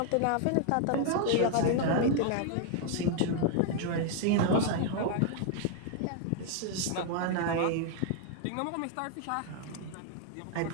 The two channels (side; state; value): both; different; correlation 0.00